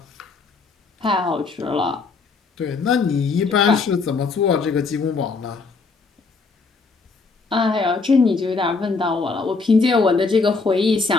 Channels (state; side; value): quieter; right; 4.3 dB